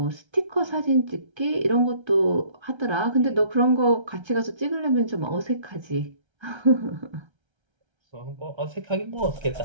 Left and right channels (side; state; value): left; late; 1.3 ms